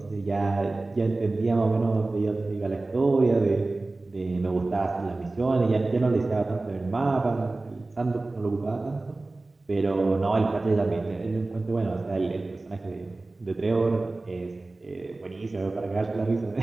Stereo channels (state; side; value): quieter; left; 3.1 dB